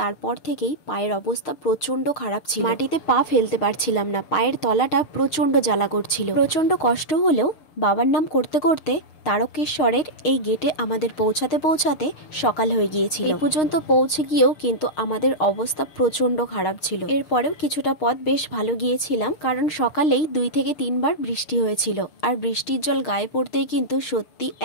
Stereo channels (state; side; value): late; right; 6.5 ms